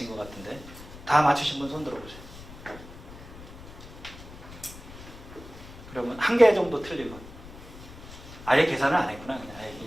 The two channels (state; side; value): noise; left; rumble, 16 dB below the sound